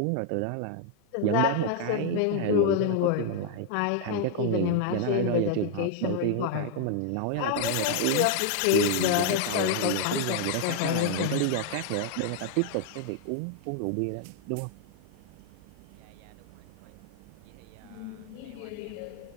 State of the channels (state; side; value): different; both; correlation 0.00